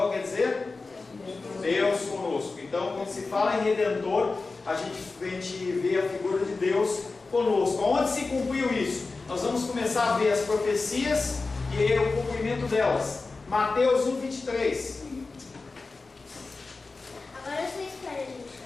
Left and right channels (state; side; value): quieter; right; 3.8 dB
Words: quer dizer Deus conosco. Então, quando se fala em Redentor, a gente vê a figura de Deus conosco. Onde se cumpriu isso? Nós vamos começar a ver as profecias e o cumprimento delas. Mateus 1:23. Agora vocês querem a gente